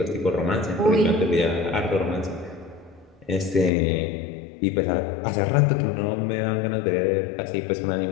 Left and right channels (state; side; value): drops out; right; at 3.7 s